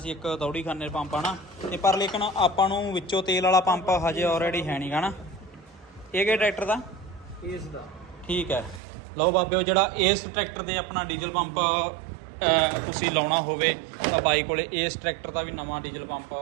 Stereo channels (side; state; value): left; drops out; at 8.8 s